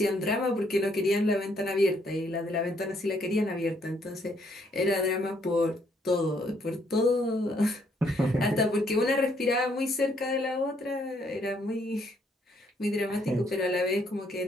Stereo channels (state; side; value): normal; both; correlation 0.70